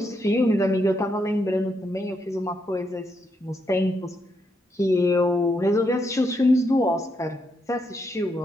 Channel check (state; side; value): normal; both; correlation 0.79